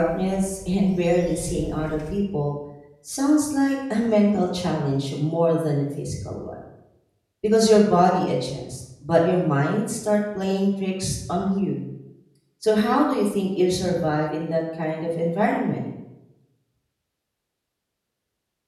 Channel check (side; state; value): both; identical; correlation 1.00